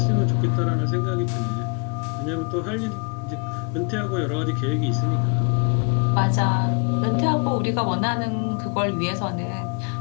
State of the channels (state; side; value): quieter; right; 37.1 dB